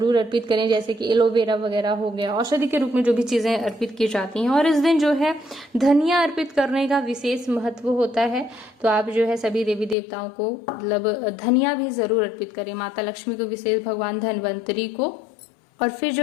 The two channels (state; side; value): drops out; right; at 10.0 s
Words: अर्पित करें। जैसे कि एलोवेरा वगैरह हो गया, औषधि के रूप में जो भी चीजें अर्पित की जाती हैं। और इस दिन जो है धनिया अर्पित करने का विशेष महत्व होता है। तो आप जो है सभी देवी देवताओं को मतलब धनिया भी जरूर अर्पित करें। माता लक्ष्मी को विशेष, भगवान धन्वंतरी को। और फिर